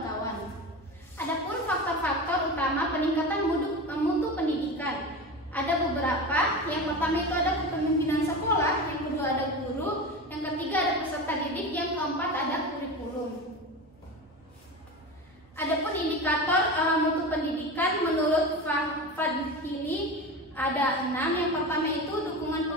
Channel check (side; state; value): both; normal; correlation 0.26